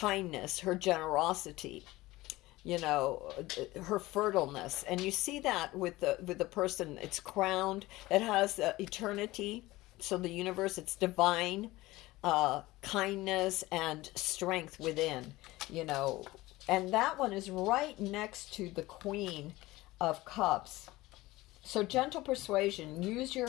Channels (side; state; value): right; quieter; 18.9 dB